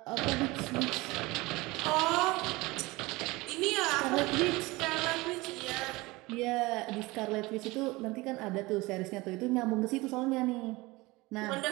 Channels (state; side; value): quieter; left; 21.9 dB